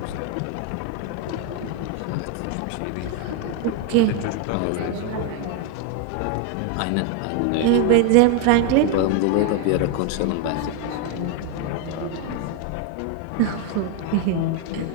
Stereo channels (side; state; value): both; different; correlation 0.01